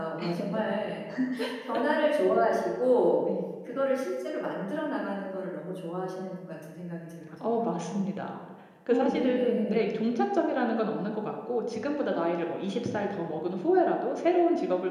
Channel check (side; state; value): both; identical; correlation 1.00